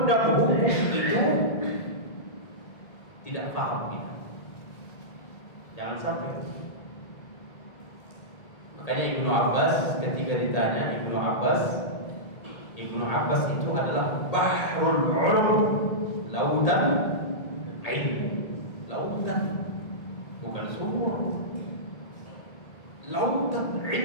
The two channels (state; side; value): late; right; 1.8 ms